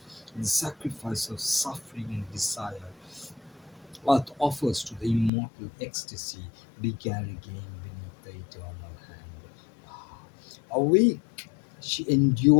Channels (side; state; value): right; drops out; at 5.3 s